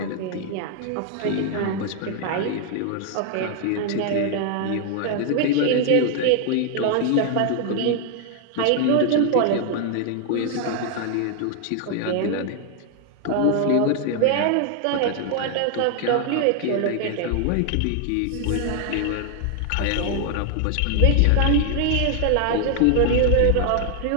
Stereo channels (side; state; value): both; different; correlation 0.00